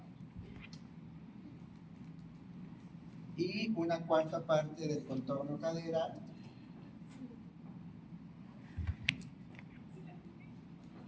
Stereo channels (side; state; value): both; identical; correlation 1.00